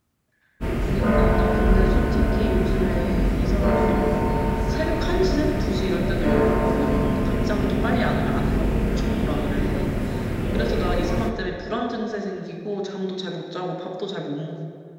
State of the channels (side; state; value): both; identical; correlation 1.00